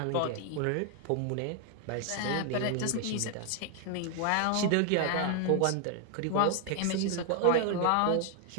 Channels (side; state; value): both; different; correlation 0.00